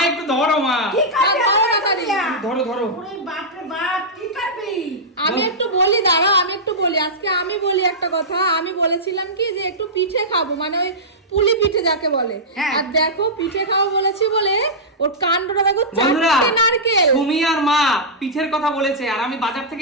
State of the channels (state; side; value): normal; both; correlation -0.12